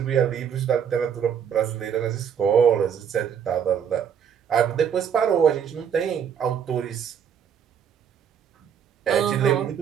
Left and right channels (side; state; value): left; quieter; 8.0 dB